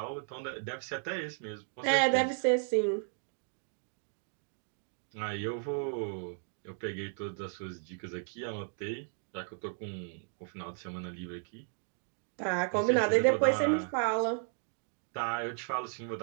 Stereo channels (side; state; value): left; silent; 55 dB below the other